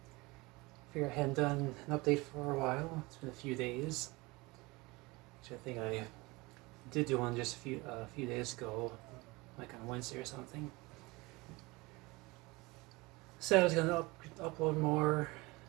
Figure I hadn't done an update for a while. It's been a few days. Actually, I think I did do one just a few days ago, like on Wednesday or something. Said I was gonna upload more, or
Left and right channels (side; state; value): left; quieter; 23.3 dB